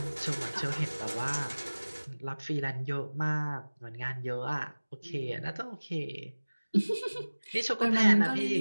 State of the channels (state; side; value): inverted; both; correlation -1.00